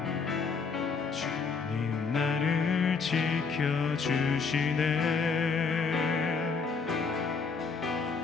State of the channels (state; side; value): quieter; right; 5.1 dB